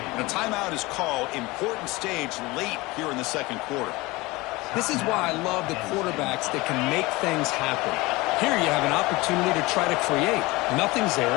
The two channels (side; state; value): right; quieter; 22.0 dB